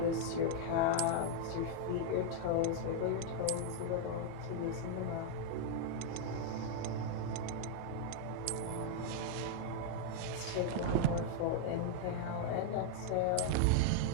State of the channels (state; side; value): different; both; correlation -0.01